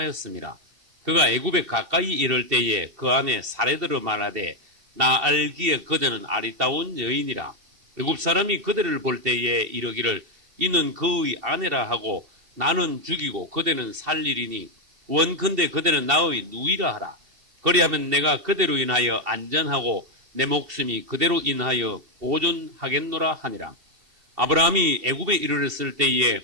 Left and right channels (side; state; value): left; late; 2.7 ms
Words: 그가 애굽에 가까이 이를 때에 그 안에 사례들을 말하되 나 알기에 그대는 아리따운 여인이라. 애굽 사람이 그대를 볼 때에 이르기를 이는 그의 아내라 하고 나는 죽이고 그대는 살리리니 원컨대 그대는 나의 누이라 하라. 그리하면 내가 그대로 인하여 안전하고 내 목숨이 그대로 인하여 보존하겠노라 하니라. 아브라함이 애굽에 이르렀을 때에